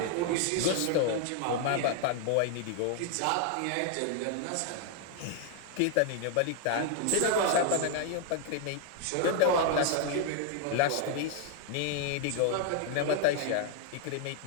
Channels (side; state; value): both; different; correlation 0.00